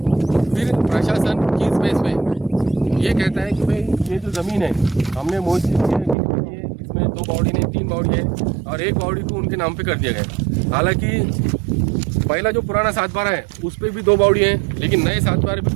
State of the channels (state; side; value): drops out; left; at 6.2 s